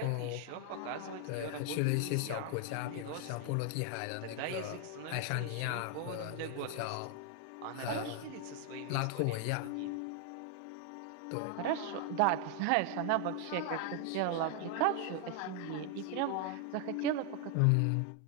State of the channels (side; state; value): both; different; correlation 0.00